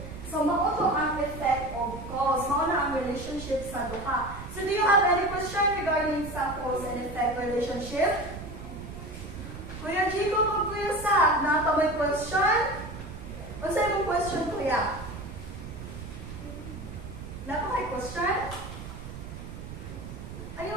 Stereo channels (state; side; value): noise; right; rumble, 11 dB below the sound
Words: So, mao to ang effect of cause. Mao na ang relationship sa duha. So, do you have any question regarding sa cause and effect relationship? Kuya Chico, kung Kuya Sa, nata may question? Ano sa imong question, Kuya? Napa may question?